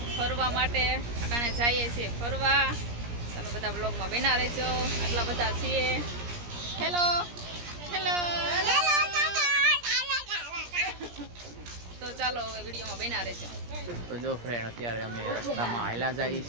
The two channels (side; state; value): left; late; 17 ms